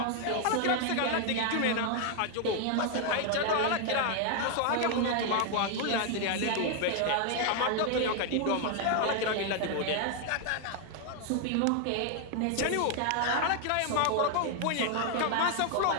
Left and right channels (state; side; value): different; both; correlation 0.00